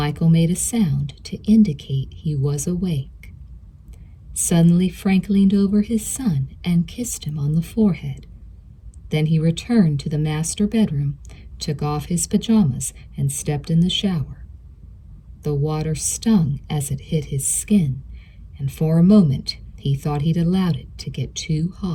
made a sound to indicate he was awake. Suddenly, Frank leaned over his son and kissed him on the forehead. Then he returned to the master bedroom, took off his pajamas, and stepped in the shower. The water stung as it hit his skin, and for a moment he thought he'd allowed it to get too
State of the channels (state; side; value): identical; both; correlation 1.00